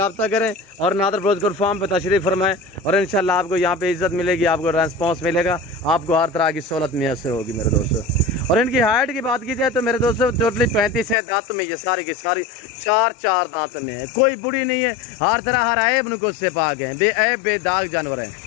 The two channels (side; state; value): right; drops out; at 11.2 s